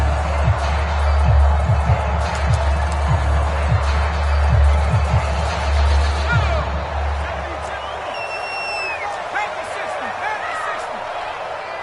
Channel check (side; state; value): both; identical; correlation 1.00